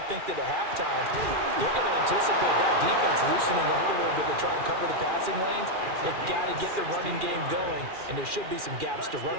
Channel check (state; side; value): late; left; 2.4 ms